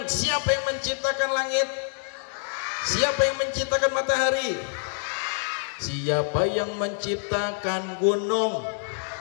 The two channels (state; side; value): silent; right; digital silence